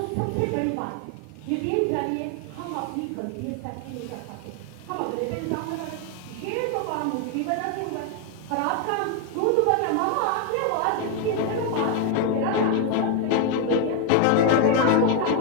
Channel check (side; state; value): both; different; correlation 0.01